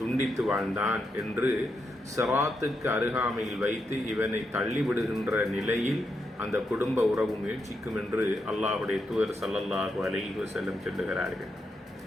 வாழ்ந்தான் என்று ஸிராத்துக்கு அருகாமையில் வைத்து இவனை தள்ளிவிடுகின்ற நிலையில் அந்த குடும்ப உறவு முயற்சிக்கும் என்று அல்லாஹுடைய தூதர் ஸல்லல்லாஹு அலைஹி வஸல்லம் சொல்லுகிறார்கள்.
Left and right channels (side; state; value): both; normal; correlation 0.83